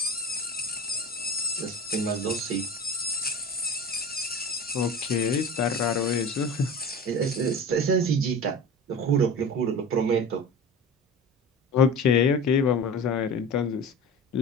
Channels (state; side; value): normal; both; correlation 0.33